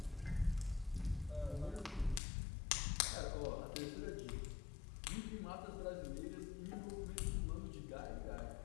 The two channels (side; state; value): right; drops out; at 2.2 s